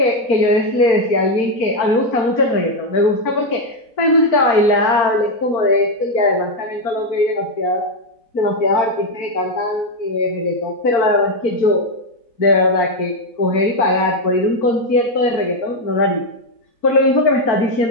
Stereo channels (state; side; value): late; right; 4.4 ms